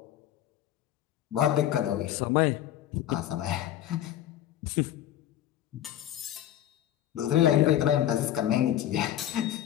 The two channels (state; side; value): quieter; right; 12.0 dB